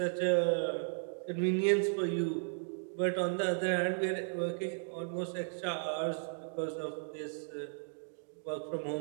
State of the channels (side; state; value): left; silent; digital silence